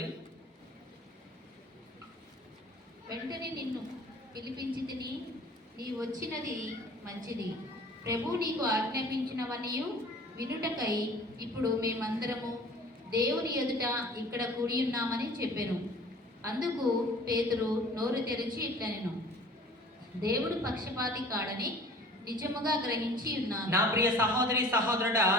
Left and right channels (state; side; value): normal; both; correlation 0.46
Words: వెంటనే నిన్ను పిలిపించి తిని నీ వచ్చినది మంచిది. ప్రభు నీకు ఆజ్ఞాపించినవనియు వినుటకై ఇప్పుడు మేమందరము దేవుని ఎదుట ఇక్కడ కూడి ఉన్నామని చెప్పాను. అందుకు పేతురు నోరు తెరిచి ఇట్లనెను, దేవుడు పక్షపాతి కాడని నిజముగా గ్రహించి ఉన్నాను. నా ప్రియ సహోదరి సహోదరుడా,